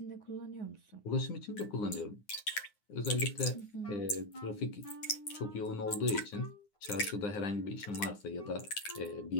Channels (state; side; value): late; right; 9.6 ms